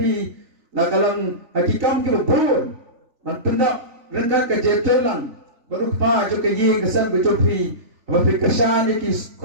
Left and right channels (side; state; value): left; late; 3.4 ms